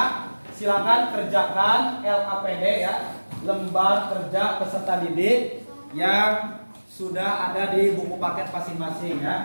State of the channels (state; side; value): inverted; both; correlation -1.00